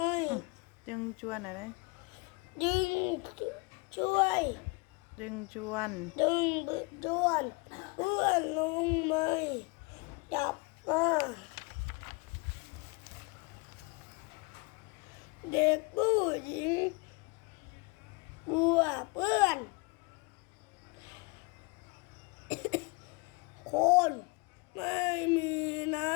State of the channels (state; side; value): quieter; right; 29.0 dB